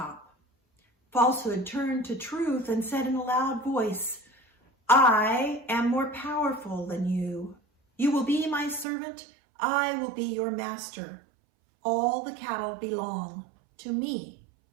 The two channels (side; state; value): left; drops out; at 8.8 s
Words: Falsehood turned to Truth and said in a loud voice, "I am more powerful than you. You will be my servant. I will be your master. All the cattle belong to me."